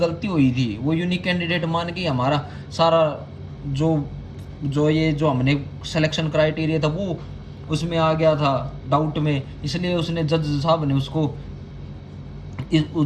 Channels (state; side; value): identical; both; correlation 1.00